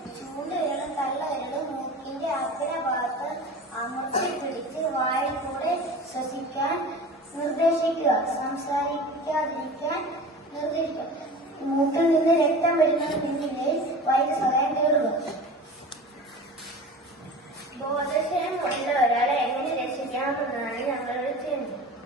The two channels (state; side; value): normal; both; correlation 0.35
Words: ചൂണ്ടുവിരലും തള്ളവിരലും മൂക്കിന്റെ അഗ്രഭാഗത്ത് അമർത്തി പിടിച്ച് വായിൽ കൂടെ ശ്വസിക്കാൻ നിർദ്ദേശിക്കുക. സംസാരിക്കാതിരിക്കാൻ നിർദ്ദേശിക്കുക. മൂക്കിൽ നിന്ന് രക്തം വരുന്നതിനിടയിൽ വൈദ്യസഹായം തേടുക. ബോധക്ഷയം കൊണ്ട ഒരാളെ എങ്ങനെ രക്ഷിക്കാമെന്നാണ് ഞങ്ങളുടെ ചെയ്യുന്നത്.